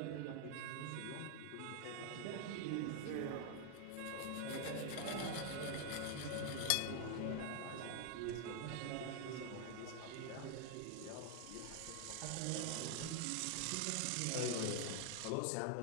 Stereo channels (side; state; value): both; different; correlation 0.00